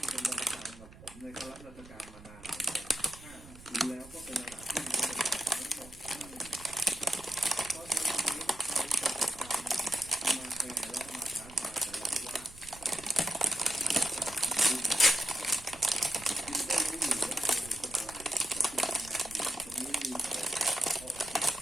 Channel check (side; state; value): right; noise; rumble, 19 dB below the sound